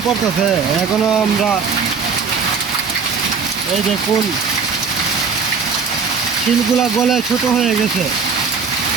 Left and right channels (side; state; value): left; quieter; 5.6 dB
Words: পড়তেছে। এখনো আমরা এই দেখুন শিলগুলা গলে ছোট হয়ে গেছে।